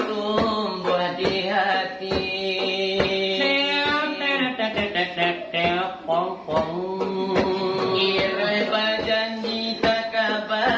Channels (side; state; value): both; identical; correlation 1.00